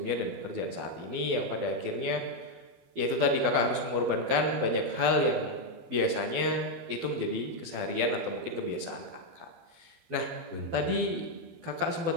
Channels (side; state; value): left; late; 12 ms